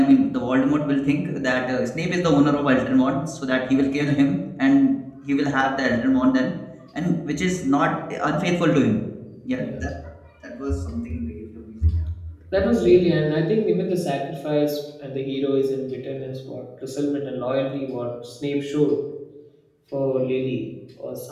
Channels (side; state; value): both; identical; correlation 1.00